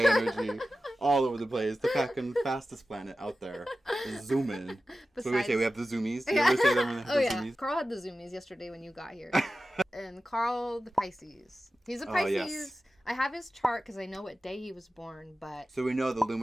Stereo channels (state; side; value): normal; both; correlation 0.94